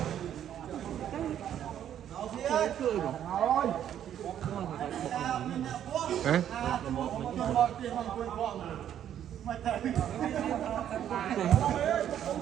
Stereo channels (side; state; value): left; quieter; 10.3 dB